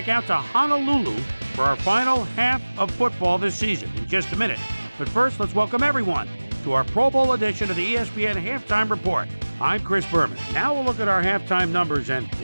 out to Honolulu for our final half of football this season in just a minute. But first, let's welcome everyone to our Pro Bowl edition of the ESPN Halftime Report. I'm Chris Berman. Now we'll look at our halftime numbers and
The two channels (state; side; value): inverted; both; correlation -1.00